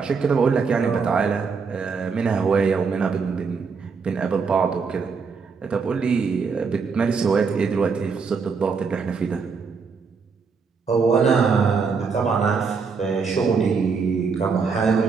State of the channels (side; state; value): left; quieter; 5.3 dB